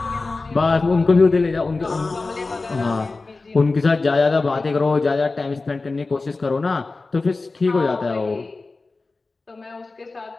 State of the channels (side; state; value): right; quieter; 3.6 dB